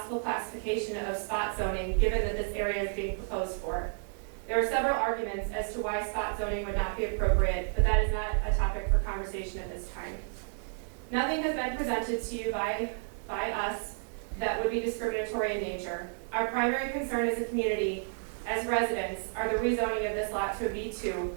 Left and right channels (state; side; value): silent; left; digital silence